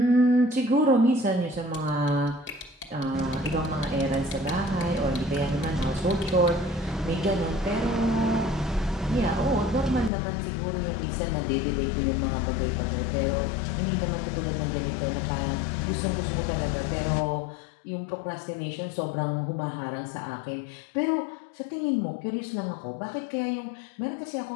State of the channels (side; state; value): right; drops out; at 10.1 s